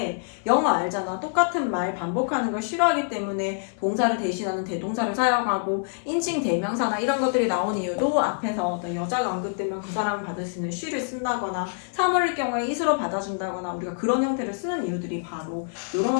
영어 알잖아. 똑같은 말 반복하는 걸 싫어하기 때문에 동사를 대신하는 대동사를 사용하고, 인칭 대명사나 이런 것들이 나온 이유도 앞에서 어떤 여자가 언급되면 그 사람을 받을 수 있는 she를 쓴다거나, 사물일 경우에 is로 받아준다거나, 우리가 그런 형태를 쓰는 이유들이 바로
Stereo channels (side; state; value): right; silent; digital silence